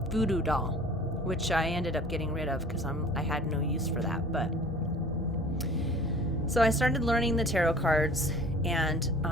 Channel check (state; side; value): normal; both; correlation 0.46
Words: voodoo doll, which I ended up getting rid of because I had no use for that. But so I started learning the tarot cards, and